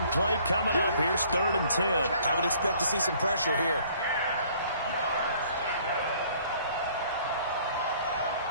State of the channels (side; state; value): both; inverted; correlation -0.58